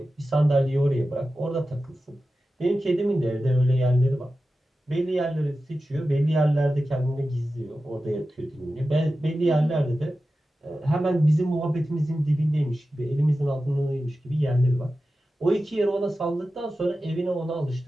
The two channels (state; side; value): normal; both; correlation 0.93